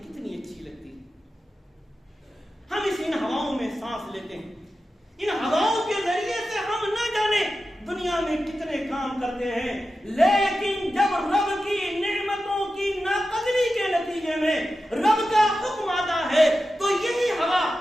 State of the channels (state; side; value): normal; both; correlation 0.92